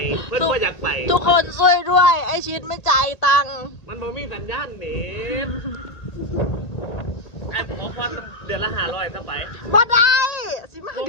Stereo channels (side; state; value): right; late; 1.9 ms